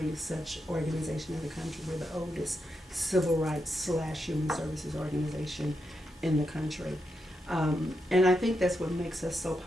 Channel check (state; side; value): normal; both; correlation 0.84